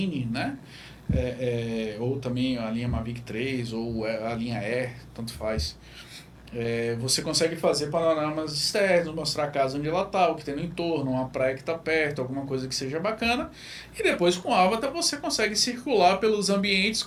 né? Ou também a linha Mavic 3 ou a linha Air, tanto faz. Você consegue fazer panoramas externos, mostrar a casa onde ela está, o que tem no entorno, uma praia que está perto, alguma coisa que seja bacana. E depois com o Avatar você consegue circular pelos ambientes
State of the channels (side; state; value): both; identical; correlation 1.00